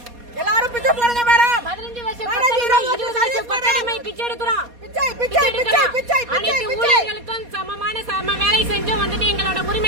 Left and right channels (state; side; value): late; left; 4.2 ms